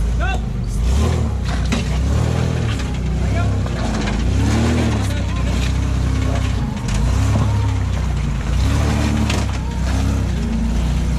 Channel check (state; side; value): identical; both; correlation 1.00